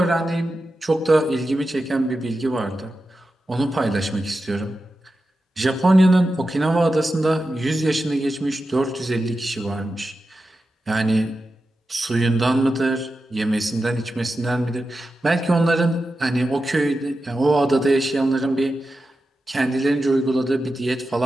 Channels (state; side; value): normal; both; correlation 0.91